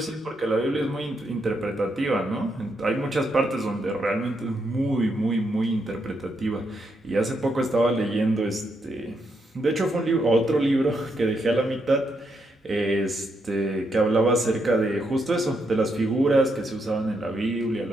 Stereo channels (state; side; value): normal; both; correlation 0.79